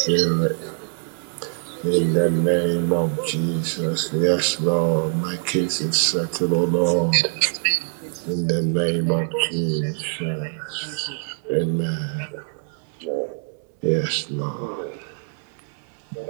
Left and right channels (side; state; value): left; silent; 61 dB below the other